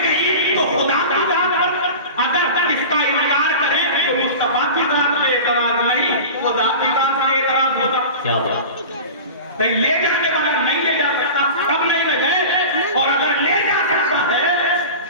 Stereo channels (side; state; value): both; inverted; correlation -0.33